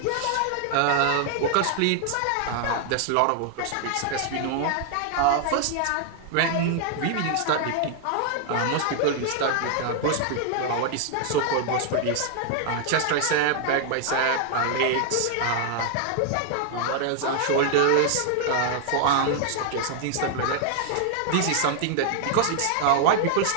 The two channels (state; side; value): different; both; correlation 0.00